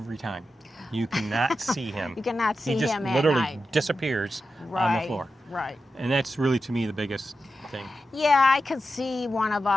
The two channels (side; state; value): both; normal; correlation 0.90